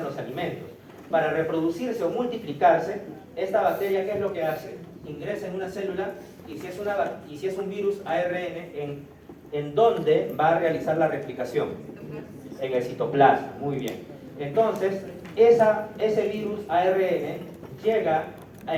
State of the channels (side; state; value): both; identical; correlation 1.00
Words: los alimentos. Para reproducirse o multiplicarse, esta bacteria, ¿qué es lo que hace? Ingresa en una célula y si es un virus ARN, ¿en dónde va a realizar la replicación? En el citoplasma, muy bien. Entonces, ese virus ARN llega